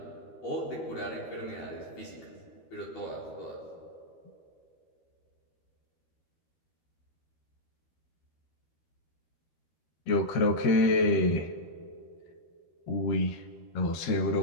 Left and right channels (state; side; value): late; right; 13 ms